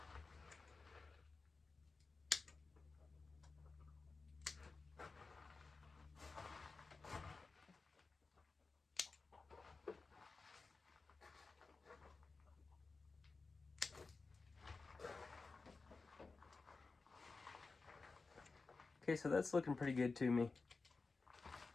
Okay, so that's looking pretty good to me.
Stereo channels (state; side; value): quieter; right; 4.0 dB